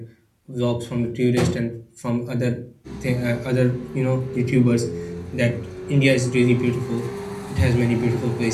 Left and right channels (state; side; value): identical; both; correlation 1.00